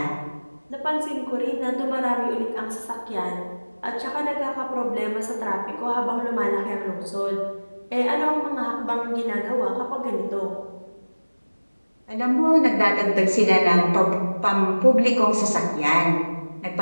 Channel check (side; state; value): both; inverted; correlation -1.00